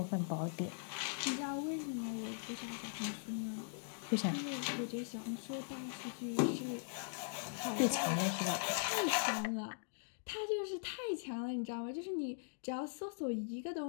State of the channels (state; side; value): silent; right; digital silence